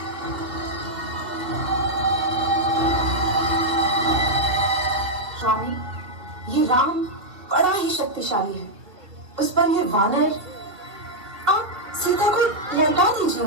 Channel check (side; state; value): left; late; 2.1 ms